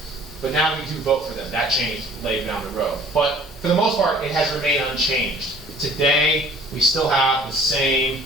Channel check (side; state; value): both; normal; correlation 0.51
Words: but now we do vote for them. That changed later down the road. But for the most part, it has remained unchanged. Today, we still have the same